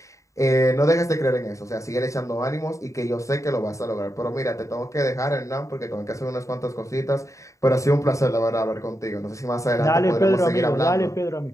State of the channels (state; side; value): late; right; 0.15 ms